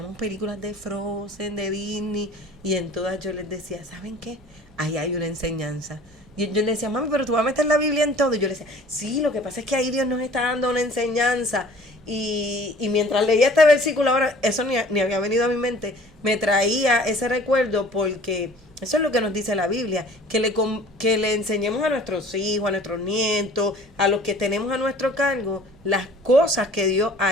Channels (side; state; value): both; normal; correlation 0.49